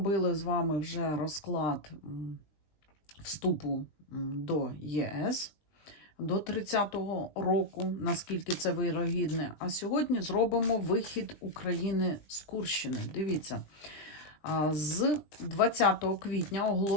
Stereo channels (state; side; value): late; right; 20 ms